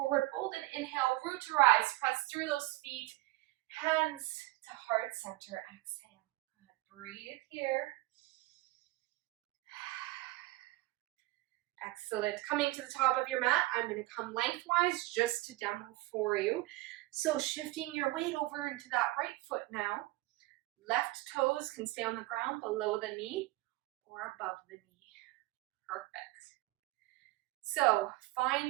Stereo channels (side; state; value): left; quieter; 19.6 dB